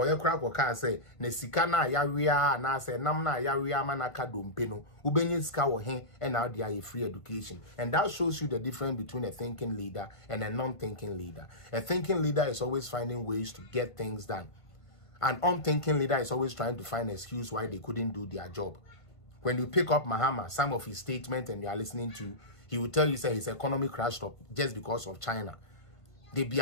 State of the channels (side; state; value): right; late; 1.5 ms